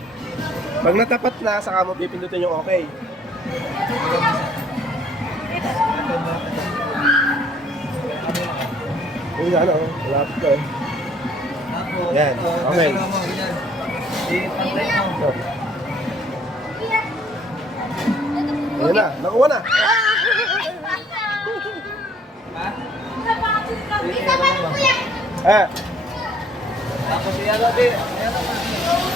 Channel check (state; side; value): normal; both; correlation 0.61